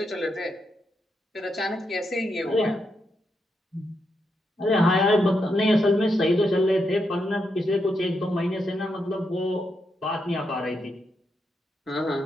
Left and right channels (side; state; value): both; normal; correlation 0.82